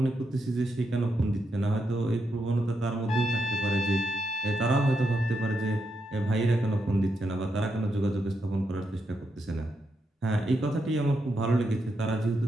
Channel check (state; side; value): normal; both; correlation 0.83